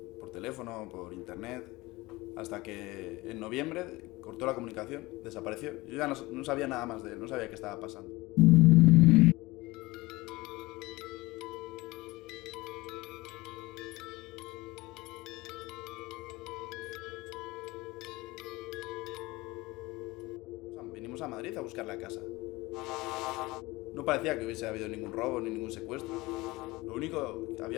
por teléfono, por internet, hasta que en noviembre cortó la comunicación, desapareció. Yo ya no sabía nada más de él, no sabía qué estaba pasando. Vinimos a Madrid a buscarle a casa. No parecía que hubiese habido ningún robo ni ningún secuestro. Lo único,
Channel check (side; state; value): right; quieter; 21.0 dB